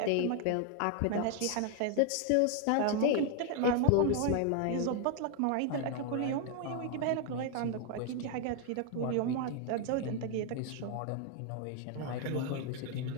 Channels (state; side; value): different; both; correlation 0.00